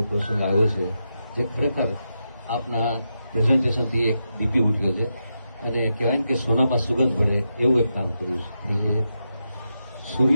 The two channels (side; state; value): both; inverted; correlation -0.87